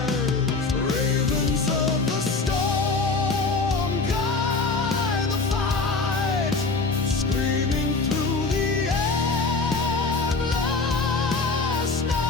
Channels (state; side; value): quieter; right; 4.0 dB